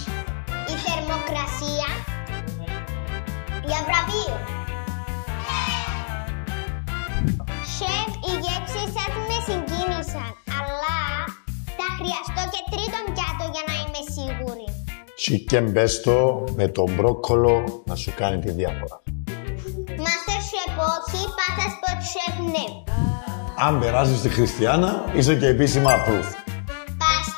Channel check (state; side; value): silent; right; digital silence